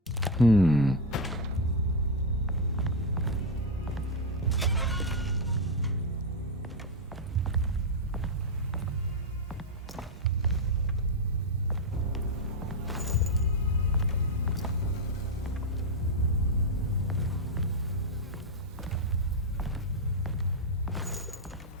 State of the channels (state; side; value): normal; both; correlation 0.03